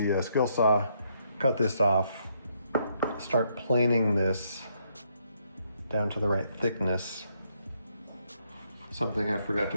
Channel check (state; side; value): inverted; both; correlation -0.74